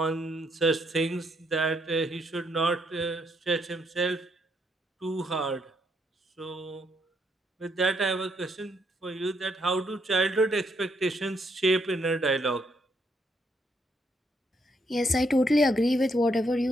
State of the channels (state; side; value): normal; both; correlation 0.74